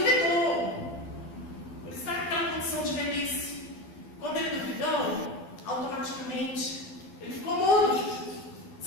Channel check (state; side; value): late; right; 12 ms